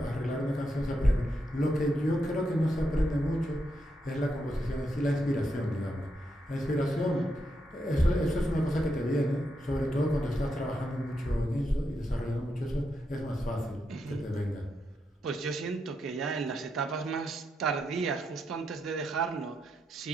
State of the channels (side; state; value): both; normal; correlation 0.83